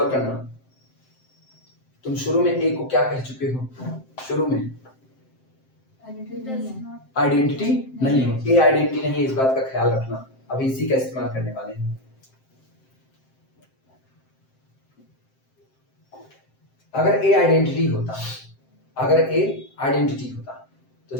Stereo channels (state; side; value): late; right; 7.7 ms